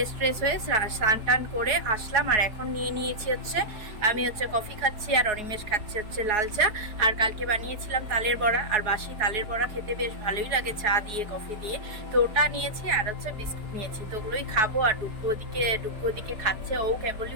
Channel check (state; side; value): late; left; 4.7 ms